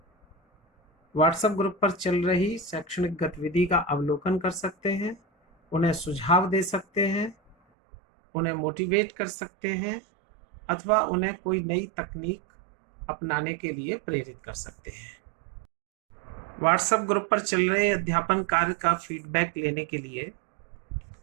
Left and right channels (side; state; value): left; drops out; at 7.6 s